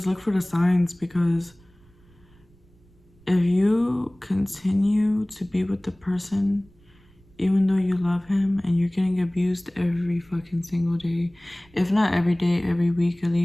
look for the signs, because if you continue to be with the person, even though you love him, and you're getting abused every fucking single day, if not every day, every week at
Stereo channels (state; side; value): noise; right; rumble, 29 dB below the sound